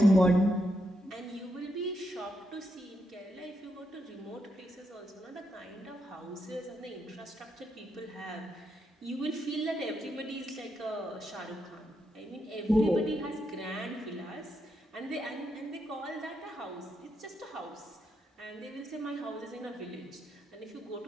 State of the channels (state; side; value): normal; both; correlation 0.82